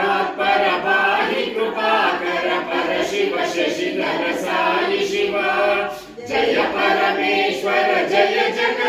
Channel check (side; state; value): both; identical; correlation 1.00